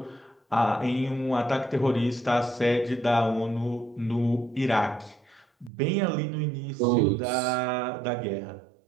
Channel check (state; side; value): drops out; left; at 5.7 s